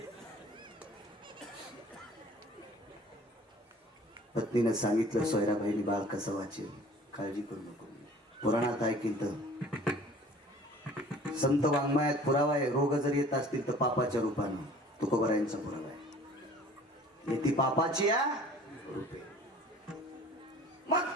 पत्नीनं सांगितलं सोयराबाईनी बाळ कसं वाचेल काळजी करू नको. पुराणात ऐकील तर संत वाङ्मयात पुरावा आहे. रोग जर येत असतील तर पापाच्या रूपानं. तुकोबरायांचा पुरावा आहे. ती पापाची रूपे. मग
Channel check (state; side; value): normal; both; correlation 0.48